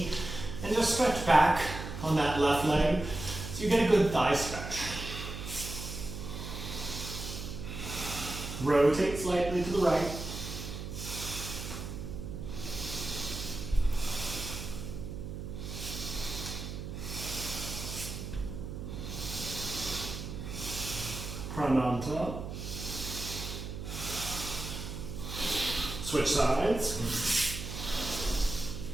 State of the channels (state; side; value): noise; right; hum, 7 dB below the sound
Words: and just stretch back on that left leg so you get a good thigh stretch. Rotate slightly to the right. Prananta. Switch sides.